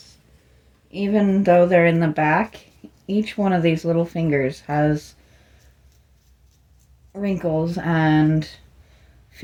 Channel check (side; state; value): both; identical; correlation 1.00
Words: Even though they're in the back, each one of these little fingers has wrinkles and